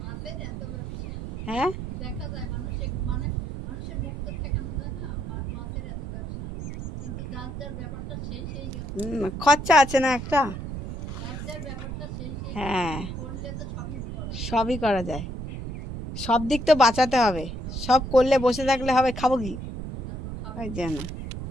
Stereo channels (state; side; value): noise; right; rumble, 7 dB below the sound